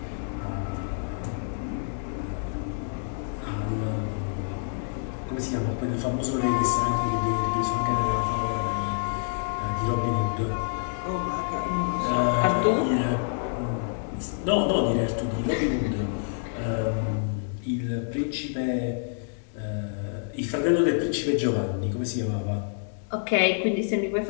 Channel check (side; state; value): right; silent; digital silence